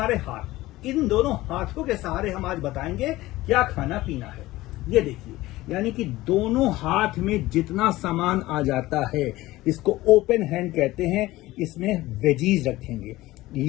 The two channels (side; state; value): right; quieter; 17.7 dB